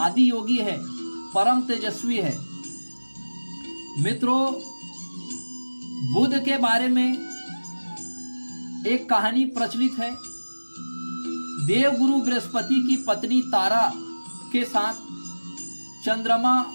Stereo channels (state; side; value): inverted; both; correlation -1.00